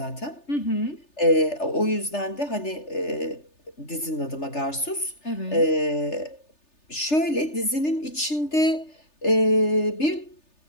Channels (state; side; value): late; right; 3.3 ms